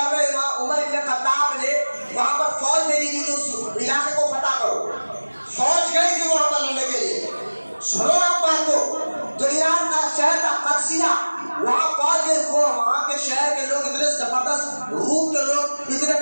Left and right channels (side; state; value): both; inverted; correlation -1.00